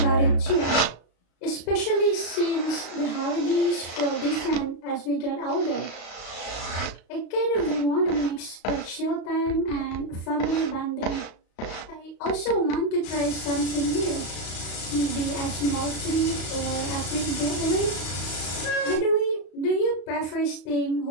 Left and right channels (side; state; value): right; late; 35 ms